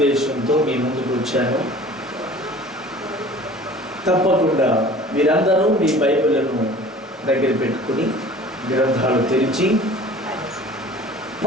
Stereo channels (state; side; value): normal; both; correlation 0.45